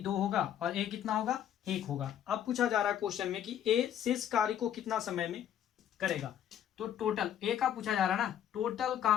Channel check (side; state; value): right; quieter; 10.1 dB